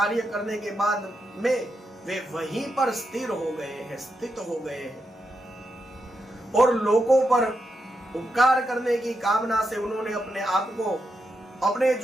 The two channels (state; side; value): normal; both; correlation 0.84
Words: करने के बाद में वे वहीं पर स्थिर हो गए हैं, स्थित हो गए हैं और लोगों पर उपकार करने की कामना से उन्होंने अपने आप को अपने